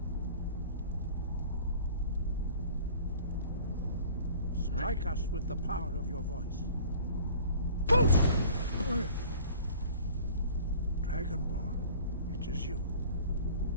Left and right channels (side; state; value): both; inverted; correlation -0.47